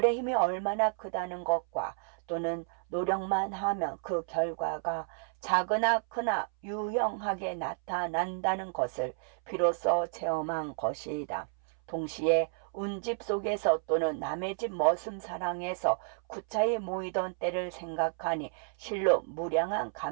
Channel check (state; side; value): silent; left; 57 dB below the other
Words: 힘이 얼마나 크다는 것과 또는 노력만 하면 그 결과가 작으나 크나 유형하게 나타난다는 것을 비로소 체험한 것이다. 동시에 운집 속에서 또는 남의 집 머슴 사랑에서 구차히 모이던 때를 생각하니 실로 무량한